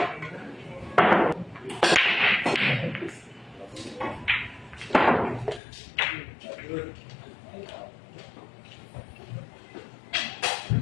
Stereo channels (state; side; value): drops out; right; at 5.6 s